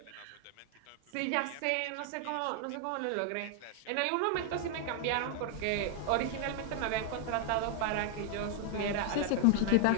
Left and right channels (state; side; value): different; both; correlation 0.00